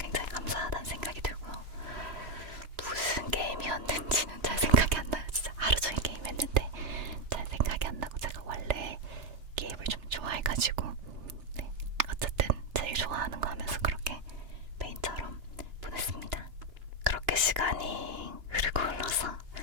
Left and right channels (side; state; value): left; late; 2.9 ms